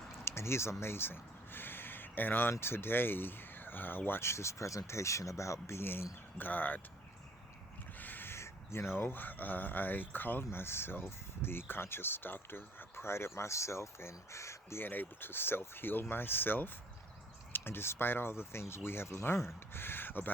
and he's amazing. And on today, I watched this presentation about being God. You know, I called myself the conscious doctor. I prided myself in being able to self-heal myself. And despite all the things we have learned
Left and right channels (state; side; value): normal; both; correlation 0.58